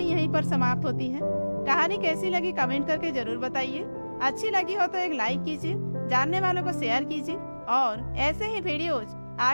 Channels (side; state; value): both; inverted; correlation -1.00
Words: यहीं पर समाप्त होती है। कहानी कैसी लगी कमेंट करके जरूर बताइए। अच्छी लगी हो तो एक लाइक कीजिए, जानने वालों को शेयर कीजिए और ऐसे ही वीडियोज